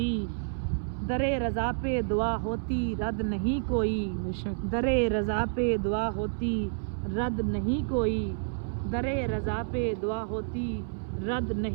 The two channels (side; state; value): left; silent; 58 dB below the other